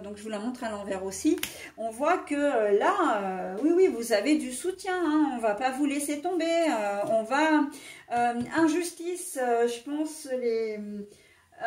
donc je vous la montre à l'envers aussi. On voit que là, oui, vous avez du soutien, hein, on va pas vous laisser tomber, on va... injustice, je pense,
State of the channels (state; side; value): identical; both; correlation 1.00